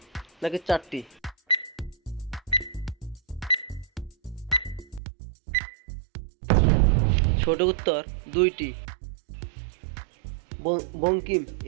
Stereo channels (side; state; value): left; drops out; at 5.0 s